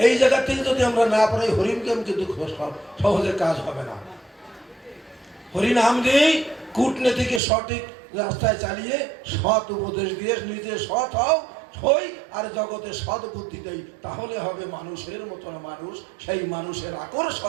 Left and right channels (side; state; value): left; drops out; at 7.4 s